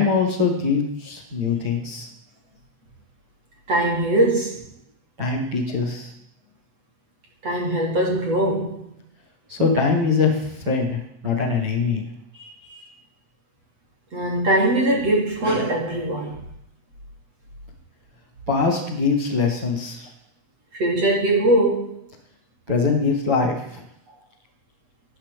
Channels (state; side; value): late; left; 8.0 ms